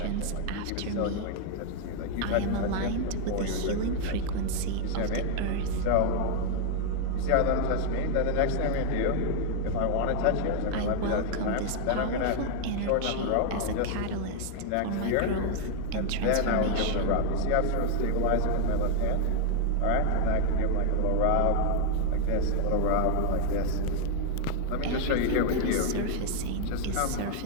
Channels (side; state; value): both; different; correlation 0.00